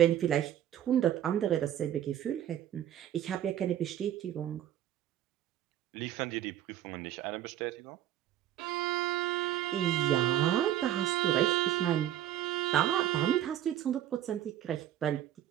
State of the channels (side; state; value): left; quieter; 11.7 dB